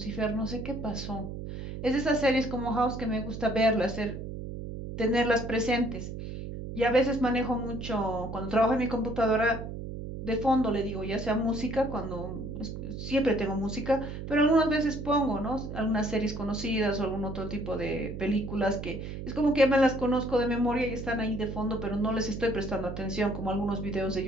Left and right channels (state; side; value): noise; right; hum, 8 dB below the sound